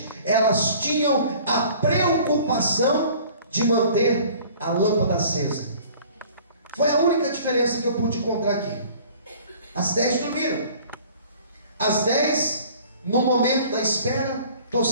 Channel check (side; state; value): both; inverted; correlation -0.50